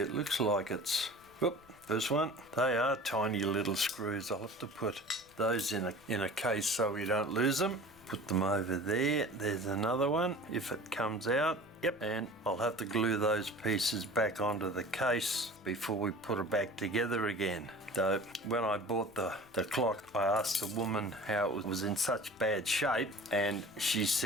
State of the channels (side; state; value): left; noise; rumble, 28 dB below the sound